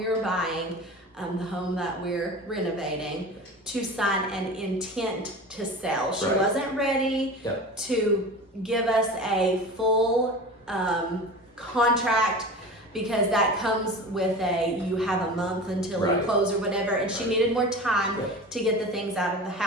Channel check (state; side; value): normal; both; correlation 0.34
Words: were buying, the home that we're renovating, to sign an intent to sell. She wasn't ready to give us a full contract, because that comes with you have a month until you close or whatever, and she needed more time to get the things out of the